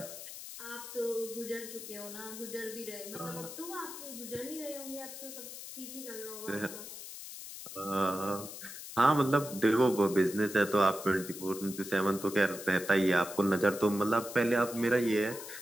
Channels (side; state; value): left; noise; hiss, 11 dB below the sound